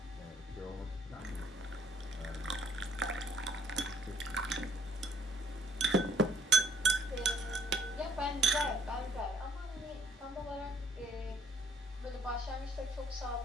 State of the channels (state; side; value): normal; both; correlation 0.64